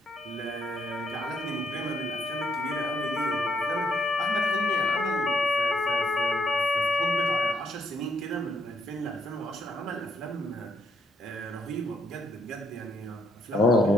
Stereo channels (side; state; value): both; normal; correlation 0.71